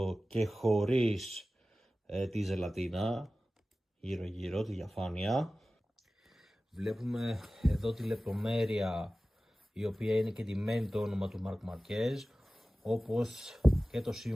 και χωρίς τη ζελατίνα, γύρω γύρω τη διαφάνεια. Βλέπουμε εδώ τη λεπτομέρεια η οποία είναι και ντυμένη το όνομα του Marc Marquez, όπως και το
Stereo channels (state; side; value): normal; both; correlation 0.96